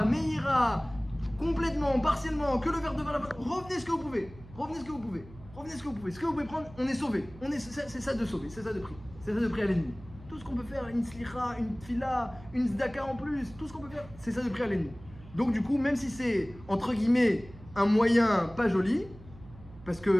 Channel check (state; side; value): noise; right; hum, 19 dB below the sound